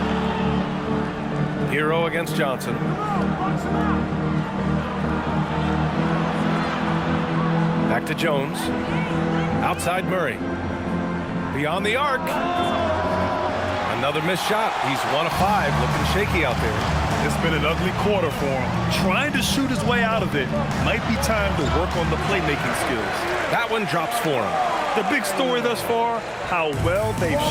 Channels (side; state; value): both; identical; correlation 1.00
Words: Hero against Johnson. Back to Jones. Outside Murray. Beyond the arc. Another missed shot. He's 1 of 5. Looking shaky out there. It's been an ugly quarter for him. Trying to shoot his way out of it. Might be time to work on the playmaking skills. That one drops for him. The big story thus far, how well they've